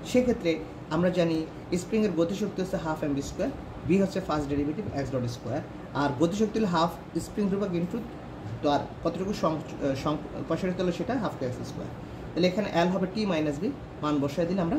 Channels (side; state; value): both; identical; correlation 1.00